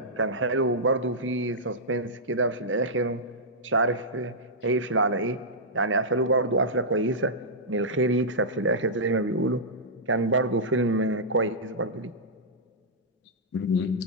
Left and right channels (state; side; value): normal; both; correlation -0.11